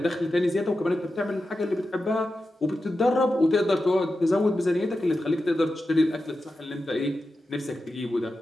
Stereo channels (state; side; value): normal; both; correlation 0.91